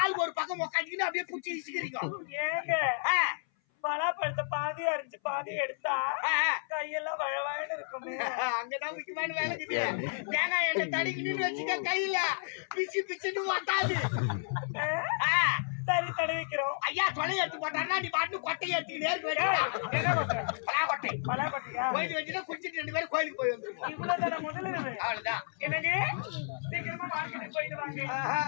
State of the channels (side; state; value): right; silent; 56 dB below the other